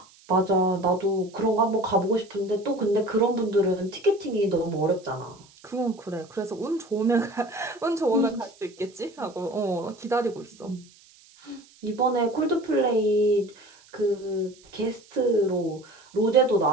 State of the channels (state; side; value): noise; right; hiss, 27 dB below the sound